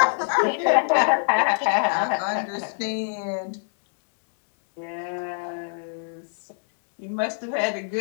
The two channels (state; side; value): silent; right; digital silence